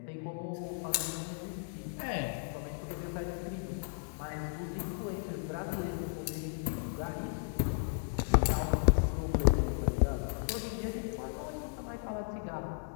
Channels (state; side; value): silent; right; digital silence